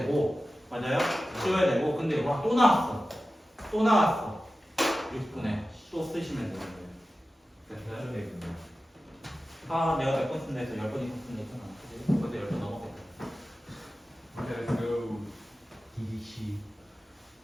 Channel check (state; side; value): normal; both; correlation 0.94